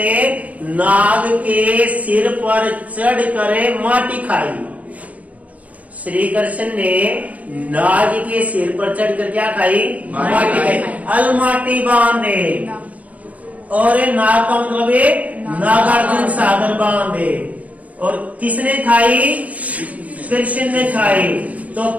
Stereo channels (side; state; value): left; late; 0.070 ms